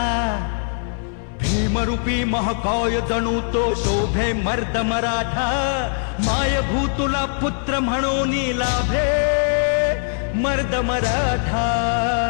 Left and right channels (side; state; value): right; silent; 61 dB below the other